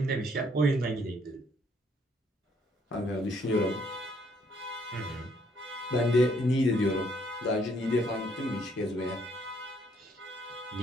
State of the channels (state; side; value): normal; both; correlation 0.67